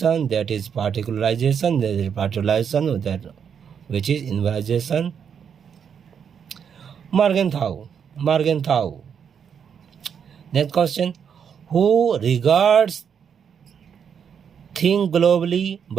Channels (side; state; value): left; quieter; 7.5 dB